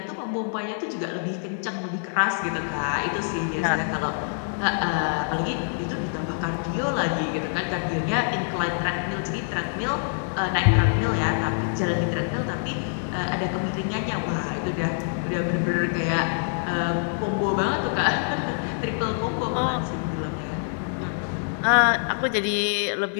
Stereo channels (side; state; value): right; silent; digital silence